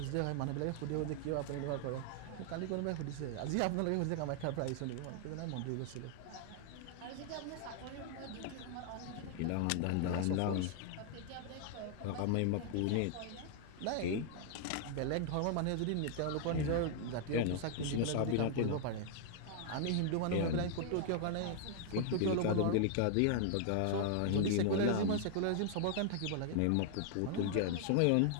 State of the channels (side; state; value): both; different; correlation 0.00